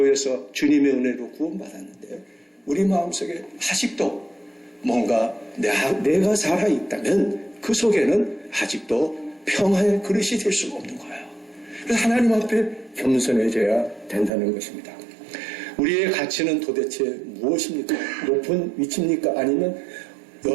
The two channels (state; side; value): drops out; left; at 14.3 s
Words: 주님의 은혜로 구원받았는데 우리 마음속에 아직도 뭔가 내가 살아있다면 그 속에는 아직도 평화의 그릇이 될 수가 없는 거예요. 그래서 하나님 앞에 겸손해져야 된다는 것입니다. 우리의 가치는 도대체 무엇입니까? 높은 위치입니까? 아니면